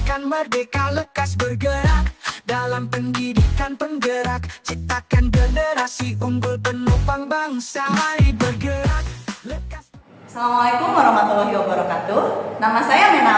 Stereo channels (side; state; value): both; identical; correlation 1.00